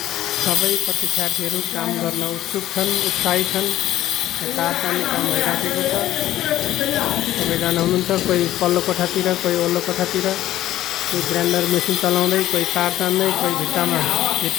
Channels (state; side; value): quieter; right; 13.7 dB